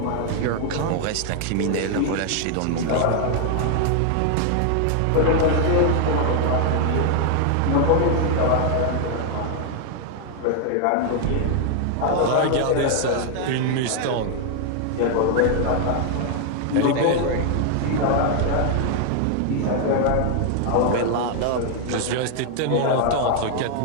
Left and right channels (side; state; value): both; different; correlation 0.00